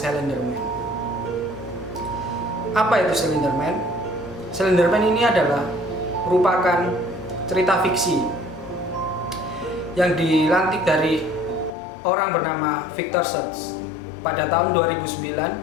Man. Apa itu Slender Man? Slender Man ini adalah merupakan cerita fiksi yang dilantik dari orang bernama Victor Schultz pada tahun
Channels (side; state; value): right; drops out; at 11.8 s